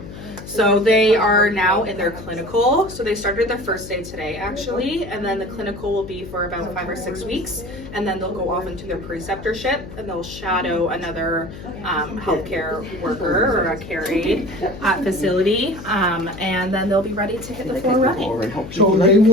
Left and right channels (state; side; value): noise; left; hum, 13 dB below the sound